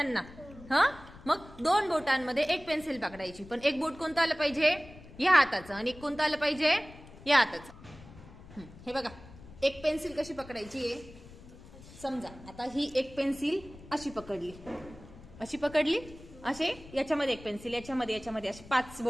मग 2 बोटांमध्ये एक पेन्सिल पकडायची. पण एक बोट कोणतं आलं पाहिजे, या हाताचं, आणि एक कोणतं आलं पाहिजे, या हाताचं. हे बघा, एक पेन्सिल कशी पकडायची आहे. समजा आता ही एक पेन्सिल अशी पकडली, असे याच्यामध्ये एक पेन्सिल, याच्यामध्ये असे 5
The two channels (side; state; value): left; noise; rumble, 19 dB below the sound